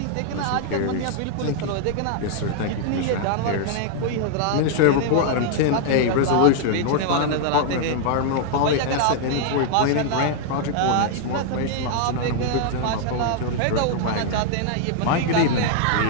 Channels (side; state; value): both; different; correlation 0.00